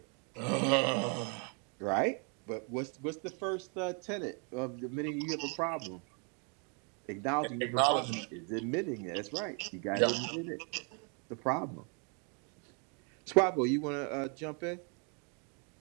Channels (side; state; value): left; quieter; 37.0 dB